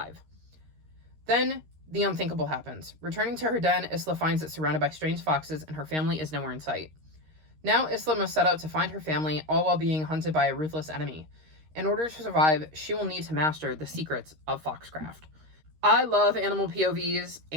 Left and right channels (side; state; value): left; late; 13 ms